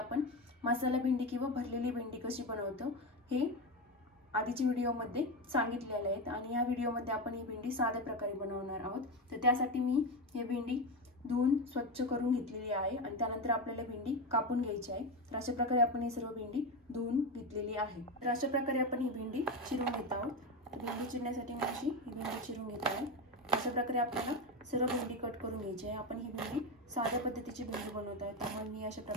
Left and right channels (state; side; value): normal; both; correlation 0.16